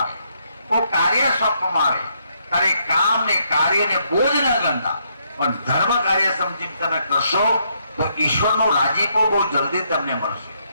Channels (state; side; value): inverted; both; correlation -0.74